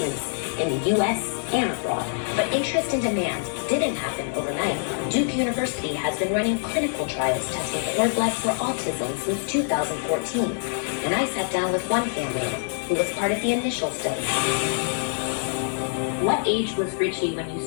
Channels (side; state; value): right; silent; 62 dB below the other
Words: in the U.S. and abroad. But interest and demand didn't happen overnight. Duke University has been running clinical trials testing cord blood for autism since 2014. And I sat down with one family who was part of the initial study. What age was Richie when you